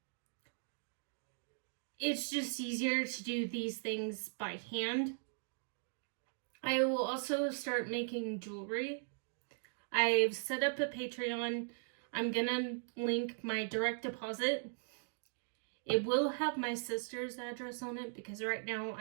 it's just easier to do these things by hand. I will also start making jewelry. I've set up a Patreon. I'm gonna link my direct deposit. It will have my sister's address on it because right now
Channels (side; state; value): left; silent; digital silence